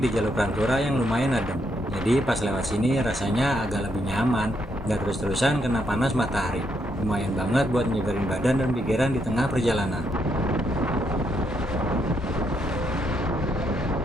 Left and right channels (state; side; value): normal; both; correlation 0.77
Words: jalur Pantura yang lumayan adem. Jadi pas lewat sini rasanya agak lebih nyaman, nggak terus-terusan kena panas matahari. Lumayan banget buat nyegerin badan dan pikiran di tengah perjalanan.